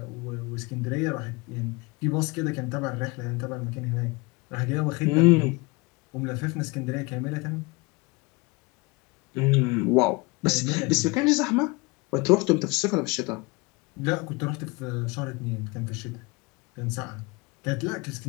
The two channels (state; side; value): quieter; right; 25.6 dB